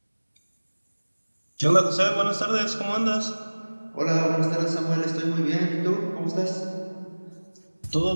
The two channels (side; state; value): both; inverted; correlation -1.00